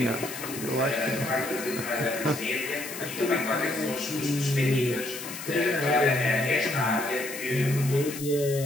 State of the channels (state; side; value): noise; left; hiss, 10 dB below the sound